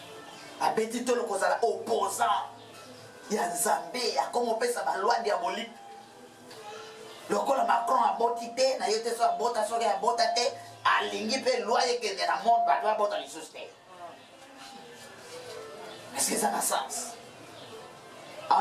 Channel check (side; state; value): both; identical; correlation 1.00